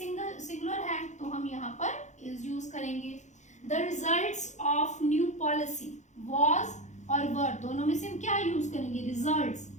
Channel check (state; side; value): late; right; 0.34 ms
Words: है तो हम यहाँ पर इज यूज करेंगे. The results of new policy. Was और वर दोनों में से हम क्या यूज करेंगे? रिजल्ट्स.